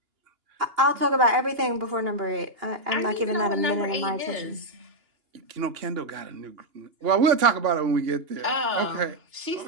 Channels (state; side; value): late; left; 2.9 ms